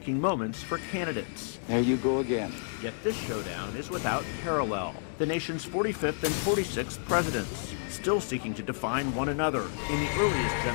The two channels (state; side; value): silent; right; digital silence